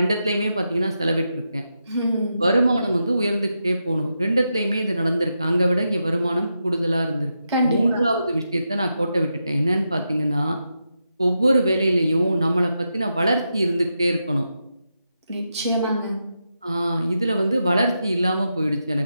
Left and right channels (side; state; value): both; inverted; correlation -0.86